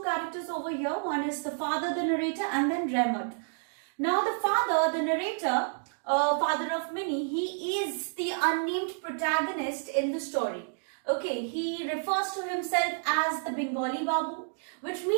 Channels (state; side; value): silent; left; digital silence